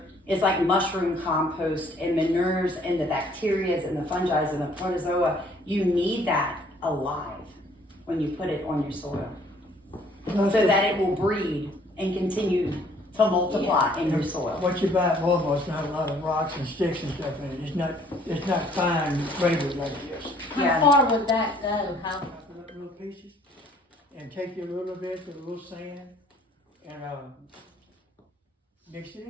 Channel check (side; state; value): both; normal; correlation 0.60